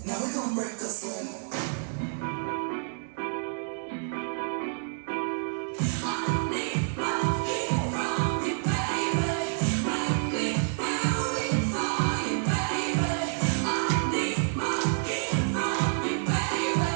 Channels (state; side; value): silent; left; digital silence